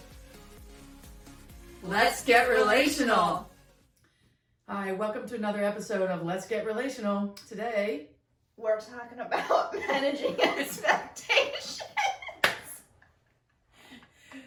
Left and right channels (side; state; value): both; identical; correlation 1.00